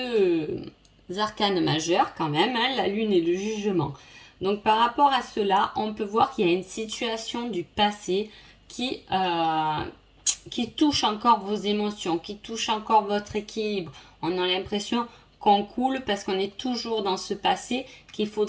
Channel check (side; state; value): both; identical; correlation 1.00